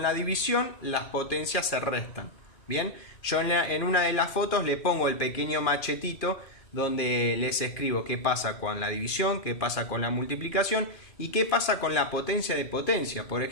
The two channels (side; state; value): right; late; 2.4 ms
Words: la división, las potencias se restan. Bien, yo en una de las fotos le pongo el pequeño machetito donde les escribo qué pasa con la división, qué pasa con la multiplicación y qué pasa con la potencia de potencia. Por